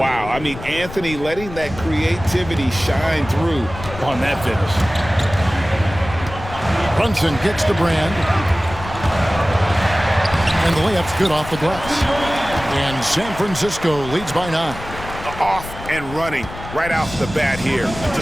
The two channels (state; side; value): noise; left; rumble, 12 dB below the sound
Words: I mean, Anthony letting that creativity shine through on that finish. Brunson kicks to Brand. And the layup's good off the glass. And San Francisco leads by 9. Off and running right off the bat here to